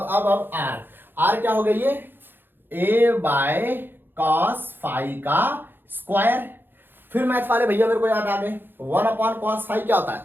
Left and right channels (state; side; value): late; left; 0.098 ms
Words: आर क्या हो गई, ये a बाय कॉस फाई का स्क्वायर। फिर मैथ वाले भैया मेरे को याद आ गए, 1 अपॉन कॉस फाई क्या होता है,